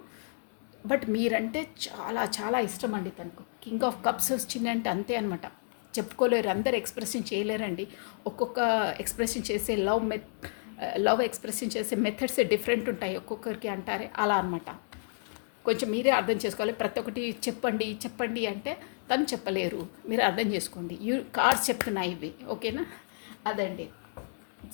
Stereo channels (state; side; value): silent; right; 57 dB below the other